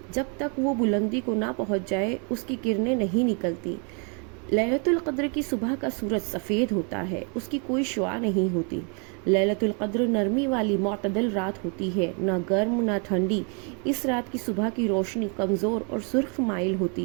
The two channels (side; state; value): left; quieter; 37.4 dB